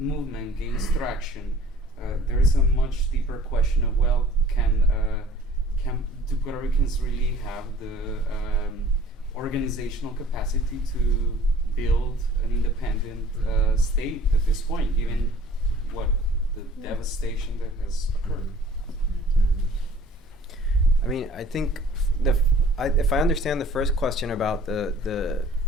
gains traction, there is a much deeper question of, well, do Puerto Ricans really have the organizational capacity to build an independent state at this point, given what the devastation that has occurred? I mean, I think if I understand the first question about the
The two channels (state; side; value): normal; both; correlation 0.50